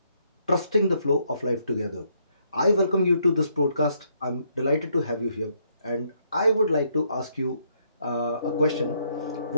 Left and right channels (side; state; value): both; inverted; correlation -0.73